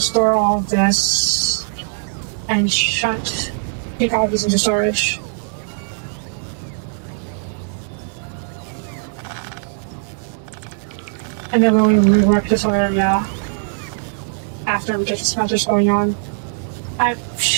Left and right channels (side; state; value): left; silent; 62 dB below the other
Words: store all of this and take all of this into storage. And then we'll rework this area after we get the smelters going on. I